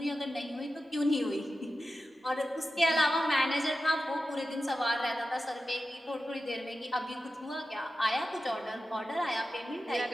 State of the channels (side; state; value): both; normal; correlation 0.93